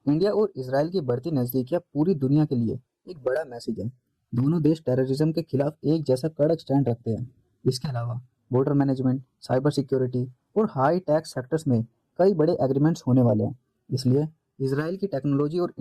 और इजराइल की बढ़ती नज़दीकियाँ पूरी दुनिया के लिए एक बड़ा मैसेज है। दोनों देश टेररिज्म के खिलाफ एक जैसा कड़क स्टैंड रखते हैं। इसके अलावा बॉर्डर मैनेजमेंट, साइबर सिक्योरिटी और हाई टैक्स सेक्टर्स में कई बड़े एग्रीमेंट्स होने वाले हैं। इसलिए इजराइल की टेक्नोलॉजी और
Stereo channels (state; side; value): identical; both; correlation 1.00